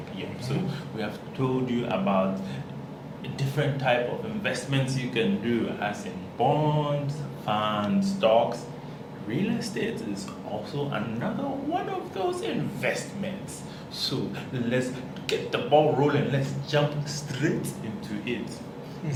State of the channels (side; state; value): both; identical; correlation 1.00